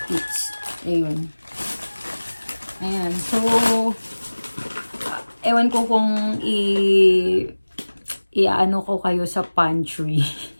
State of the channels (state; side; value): inverted; both; correlation -1.00